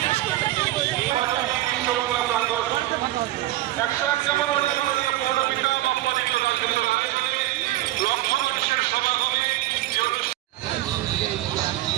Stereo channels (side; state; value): left; quieter; 16.0 dB